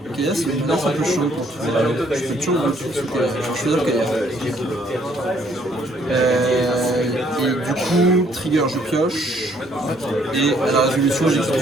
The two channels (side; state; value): both; normal; correlation 0.65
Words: Kaya, c'est une lance un peu chaude pour tout. Je peux toujours le truc sous Kaya. Je vais choisir Kaya. Et du coup, trigger, je pioche. Et à la résolution, j'exécute